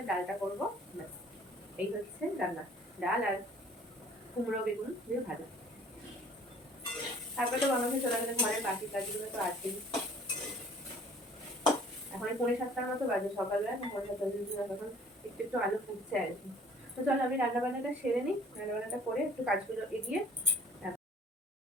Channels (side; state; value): both; normal; correlation 0.53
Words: ডালটা করবো। এই হচ্ছে রান্না, ডাল আর কুমড়ো বেগুন দিয়ে ভাজা। তারপরে তো বানাতে চলে গেলে ঘরের বাকি কাজগুলো তো আছেই। এখন 6:45 মতো বাজে, সকালবেলা 7:45 তখন একটু একটু আলু ফুটছে আর কি। তো চলো আমি রান্না বান্নাটা সেরে নিই, রান্না বান্নাটা করে একটু কাজগুলো এগিয়ে।